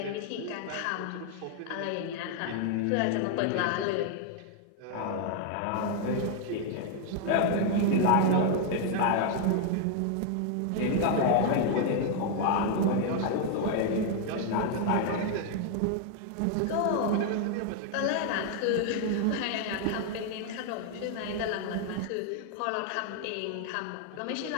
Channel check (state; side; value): different; both; correlation 0.00